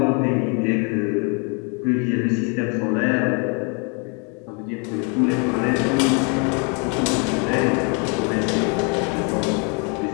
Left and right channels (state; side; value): quieter; right; 35.6 dB